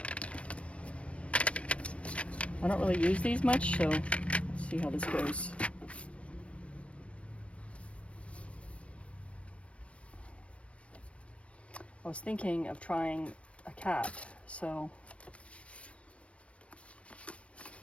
I don't really use these much, so let's see how this goes. I was thinking of trying a cat, so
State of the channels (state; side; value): late; right; 0.062 ms